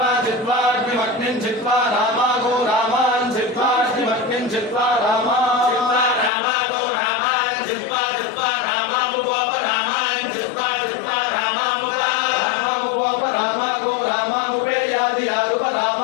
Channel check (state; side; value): drops out; right; at 6.3 s